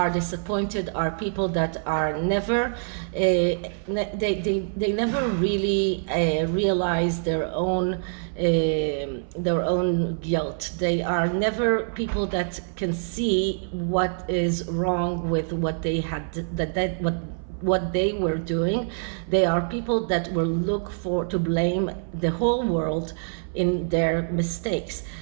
disappointed are people that are never they never really realize their own guilt. They are never people that can see what is wrong with what they had, what they were doing. They are people that will look to blame the whole world in their mistakes.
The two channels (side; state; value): left; silent; 58 dB below the other